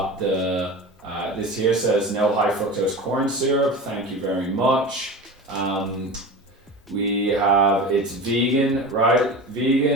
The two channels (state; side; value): normal; both; correlation 0.31